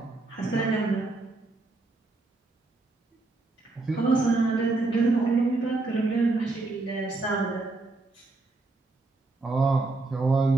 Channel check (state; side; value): quieter; left; 3.3 dB